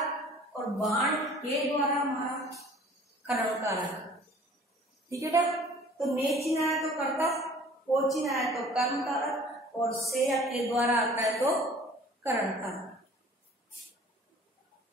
और बाण के द्वारा मारा कर्म कारक। ठीक है बेटा, तो ने चिन्ह आया तो कर्ता, को चिन्ह आया तो कर्म कारक, और से या के द्वारा आता है तो करण कारक।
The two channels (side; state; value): both; normal; correlation 0.50